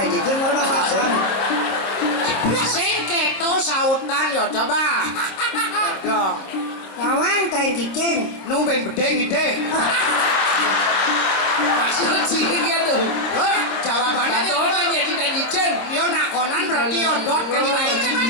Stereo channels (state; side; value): late; right; 26 ms